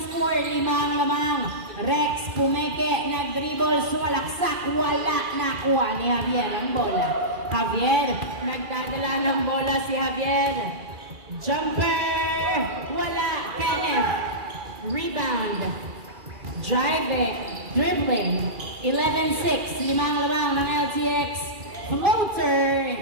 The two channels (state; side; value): late; left; 2.4 ms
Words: score. 5 ang lamang. Rex pumeke. Nag-dribble. Sumalaksak. Wala. Nakuha ni Javier ang bola. Javier, nagdadala ng bola si Javier. Jumper! Wala. Kenneth. Rebound. Driving. Dribbling. 11-6. 5 lamang ng LTX. Floater